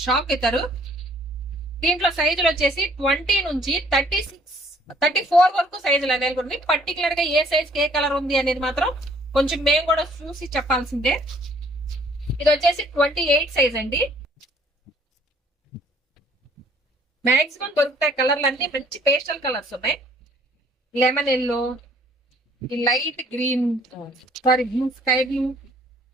షాక్ అవుతారు. దీంట్లో సైజులు వచ్చేసి 20 నుంచి 34 వరకు సైజులు అవైలబుల్ ఉంది. పర్టికులర్ గా ఏ సైజ్ ఏ కలర్ ఉంది అనేది మాత్రం కొంచెం మేము కూడా చూసి చెప్పాల్సిందే. ఇది వచ్చేసి 28 సైజ్ అండి. మాక్సిమం దొరుకుతాయి కలర్లు అన్ని. మంచి పేస్టల్ కలర్స్ ఉన్నాయి. లెమన్ ఎల్లో, ఈ light green, sorry blue, sky blue.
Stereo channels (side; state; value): both; normal; correlation 0.60